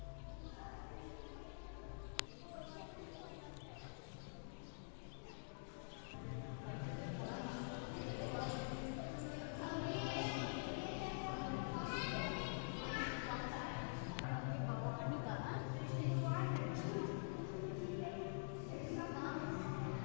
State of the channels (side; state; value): right; silent; digital silence